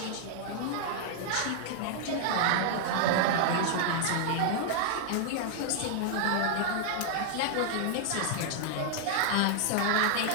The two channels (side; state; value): both; different; correlation 0.00